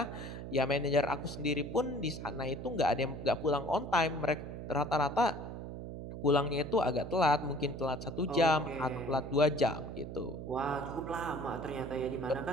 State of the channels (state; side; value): noise; right; hum, 8 dB below the sound